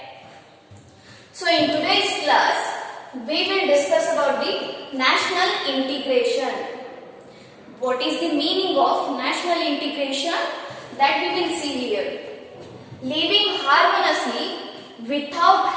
So in today's class, we will discuss about the national integration. What is the meaning of national integration? That we will see here. Living harmoniously without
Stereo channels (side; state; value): both; identical; correlation 1.00